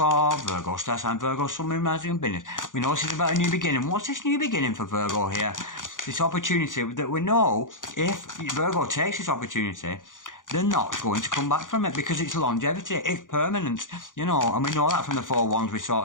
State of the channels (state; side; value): late; right; 0.88 ms